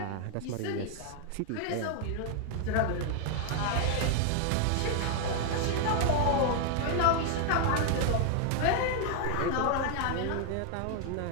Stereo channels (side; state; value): both; different; correlation 0.00